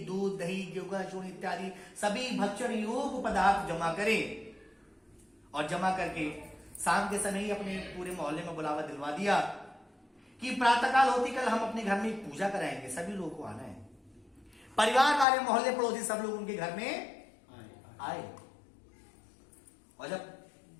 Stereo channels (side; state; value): right; drops out; at 15.2 s